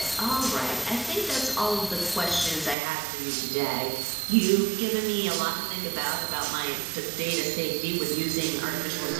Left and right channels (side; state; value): left; drops out; at 2.8 s